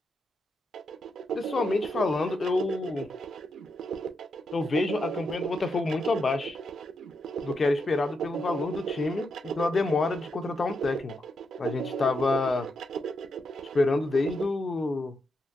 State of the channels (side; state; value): both; normal; correlation 0.83